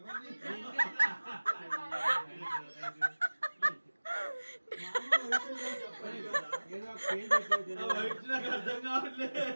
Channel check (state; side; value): inverted; both; correlation -1.00